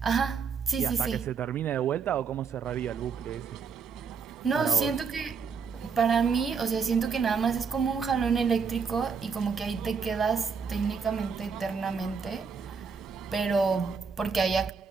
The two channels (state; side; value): quieter; left; 5.8 dB